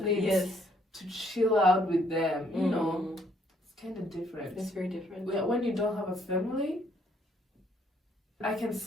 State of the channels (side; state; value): both; normal; correlation 0.67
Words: need to chill out with them. It's kind of different. It's very different. When you don't have a family, I can